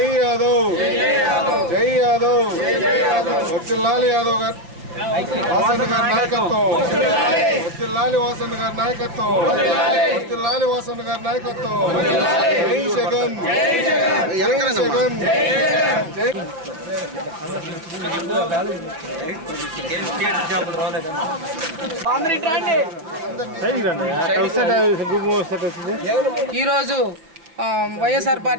యాదవ్, జై యాదవ్, వర్ధిల్లాలి యాదవ్ గారు, వాసన్న గారి నాయకత్వం, వర్ధిల్లాలి వాసన్న గారి నాయకత్వం, వర్ధిల్లాలి వాసన్న గారి నాయకత్వం. జై జగన్, జై జగన్, జై ఈరోజు వైఎస్ఆర్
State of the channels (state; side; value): late; left; 6.1 ms